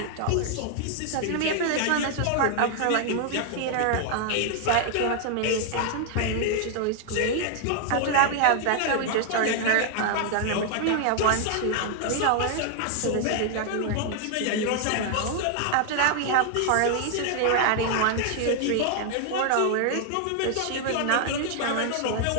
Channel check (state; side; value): different; both; correlation 0.00